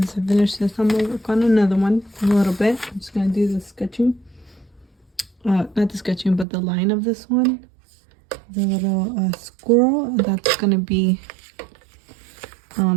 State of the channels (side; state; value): left; drops out; at 6.5 s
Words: I finished this, I'm gonna work on another one a little bit. I'm just gonna do the sketching. Not the sketching, but the line of this one. The little squirrel, that's gonna be